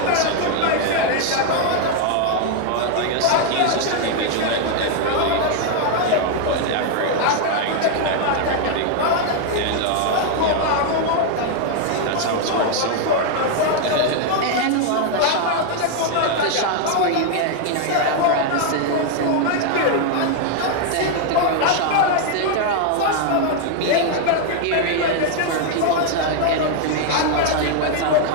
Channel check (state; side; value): different; both; correlation 0.00